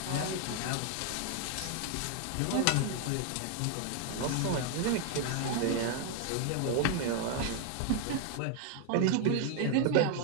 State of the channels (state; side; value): different; both; correlation 0.00